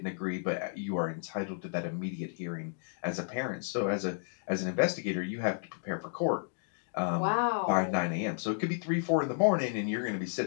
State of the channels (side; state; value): right; silent; digital silence